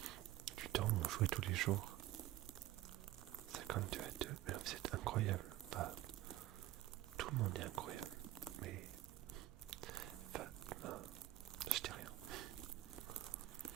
Putain, on jouait tous les jours. 52 à 2, mais c'est incroyable. Bah, tout le monde est incroyable. Mais... Enfin, non, je dis rien.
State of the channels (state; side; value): quieter; left; 14.8 dB